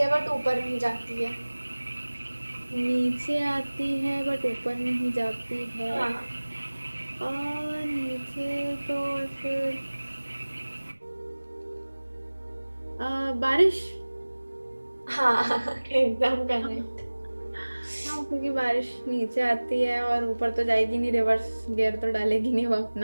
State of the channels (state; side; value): inverted; both; correlation -1.00